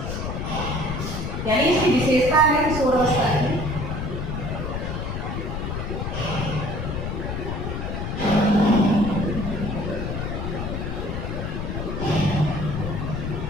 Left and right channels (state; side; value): noise; left; rumble, 3 dB below the sound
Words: यानी इसकी विशेषता है किशोर अवस्था की